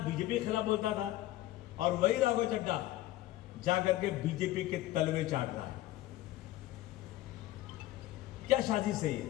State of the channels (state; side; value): quieter; right; 15.5 dB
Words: के खिलाफ बोलता था, और वही राघव चड्डा जाकर के बीजेपी के तलवे चाट रहा है। क्या शादी सही है?